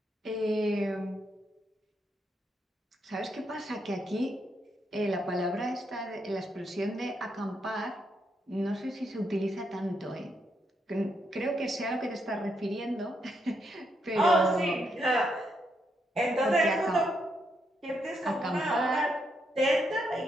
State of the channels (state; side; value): normal; both; correlation 0.79